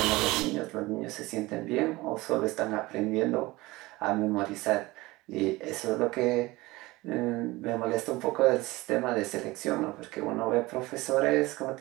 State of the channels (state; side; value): quieter; left; 20.6 dB